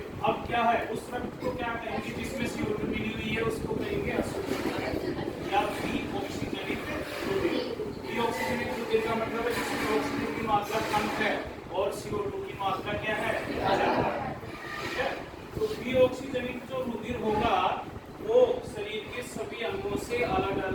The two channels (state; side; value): identical; both; correlation 1.00